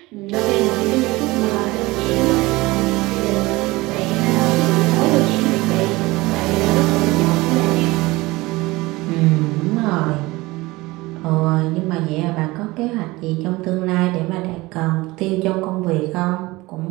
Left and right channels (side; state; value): left; quieter; 21.0 dB